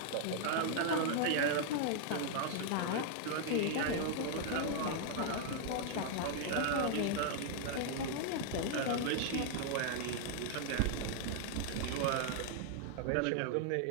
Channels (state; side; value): different; both; correlation 0.00